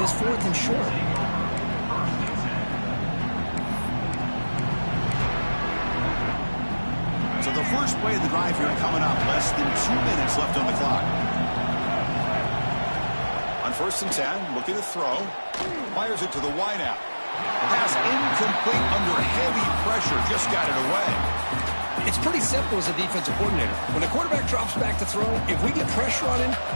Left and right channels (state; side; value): inverted; both; correlation -1.00